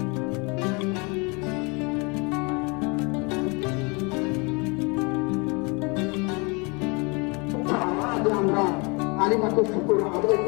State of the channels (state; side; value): quieter; right; 30.0 dB